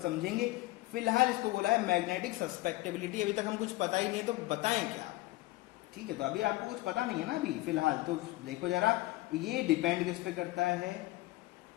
समझेंगे। फिलहाल इसको बोला है मैग्नेटिक सस्पेक्टेबिलिटी, अभी तक हम कुछ पता ही नहीं है तो बताएं क्या, ठीक है। तो अभी आपको कुछ पता नहीं है ना अभी फिलहाल, तो देखो जरा, ये डिपेंड किस पे करता है,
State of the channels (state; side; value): quieter; right; 19.2 dB